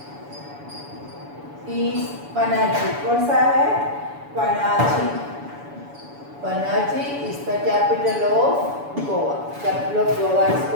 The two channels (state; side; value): late; left; 7.0 ms